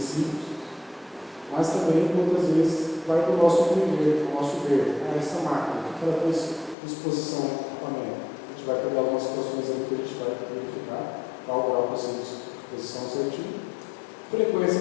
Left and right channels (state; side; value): drops out; right; at 6.8 s